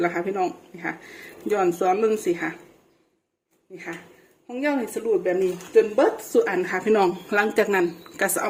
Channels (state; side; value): identical; both; correlation 1.00